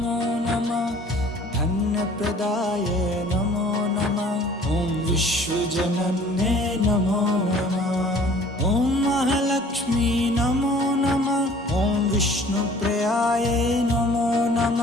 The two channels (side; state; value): both; normal; correlation 0.51